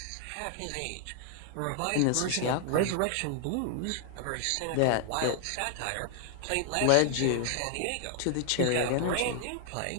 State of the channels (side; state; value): both; different; correlation 0.00